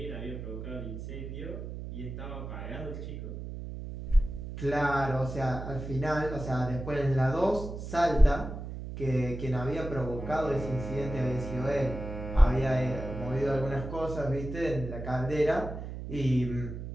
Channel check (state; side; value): noise; right; hum, 8 dB below the sound